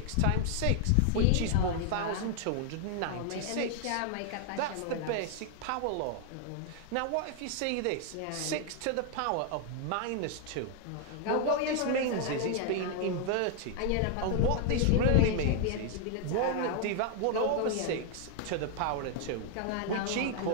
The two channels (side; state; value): both; different; correlation 0.00